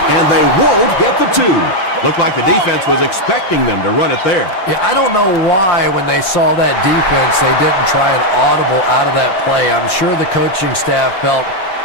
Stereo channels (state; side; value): late; right; 5.6 ms